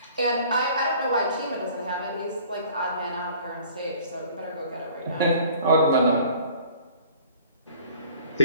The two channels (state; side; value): inverted; both; correlation -0.50